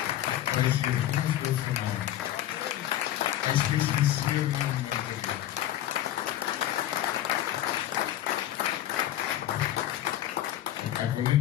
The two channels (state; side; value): quieter; right; 12.6 dB